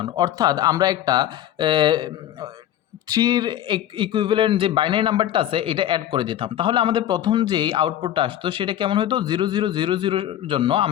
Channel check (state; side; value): quieter; right; 11.8 dB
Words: অর্থাৎ আমরা একটা 3 এর ইকুইভ্যালেন্ট যে বাইনারি নাম্বারটা আছে এটা অ্যাড করে দিতাম। তাহলে আমাদের প্রথম যেই আউটপুটটা আসতো সেটা কেমন হতো 0000 এর জন্য